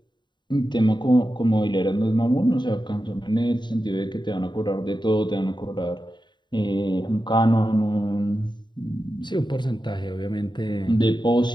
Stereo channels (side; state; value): right; late; 0.22 ms